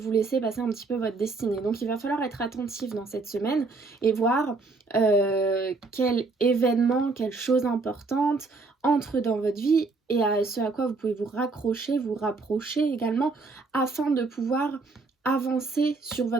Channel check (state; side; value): quieter; left; 3.9 dB